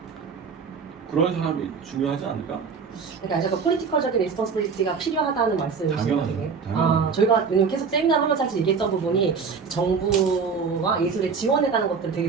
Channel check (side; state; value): left; quieter; 5.5 dB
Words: 그런 사람이 중요하지 않을까? 그러니까 약간 폴리티컬적인 리스폰시빌리티가 필요하다는 말씀이신 당연하죠. 거예요. 당연하죠. 저희가 왜냐면 계속 세미나를 하면서 사실 얘기했던 부분이 정부와 예술에 지원해가는 것들을 되게